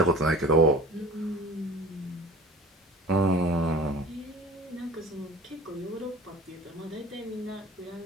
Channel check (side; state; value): both; normal; correlation 0.40